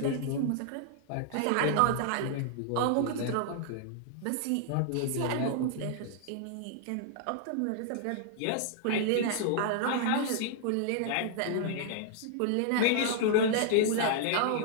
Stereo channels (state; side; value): different; both; correlation -0.01